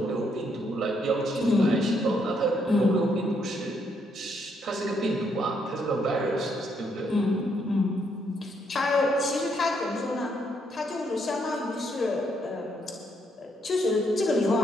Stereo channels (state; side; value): normal; both; correlation 0.74